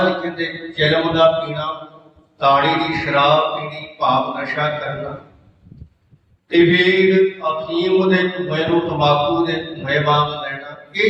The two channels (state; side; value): identical; both; correlation 1.00